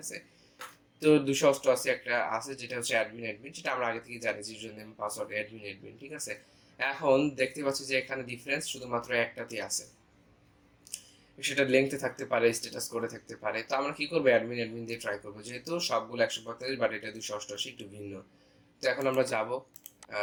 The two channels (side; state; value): both; identical; correlation 1.00